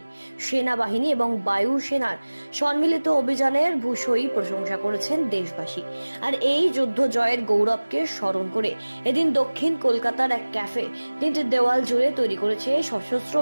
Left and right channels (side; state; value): both; inverted; correlation -1.00